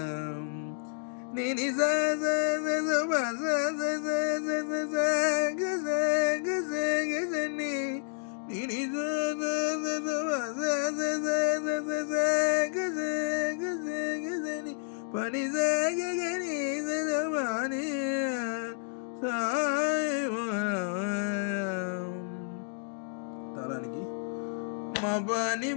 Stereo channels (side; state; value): right; silent; 58 dB below the other